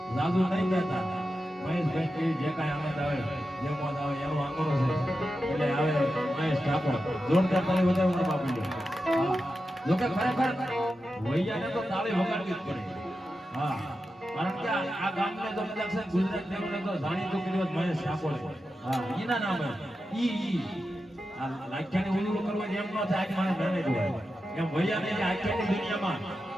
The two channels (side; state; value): both; normal; correlation 0.90